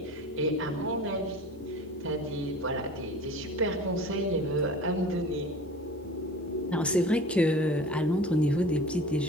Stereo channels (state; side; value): normal; both; correlation 0.40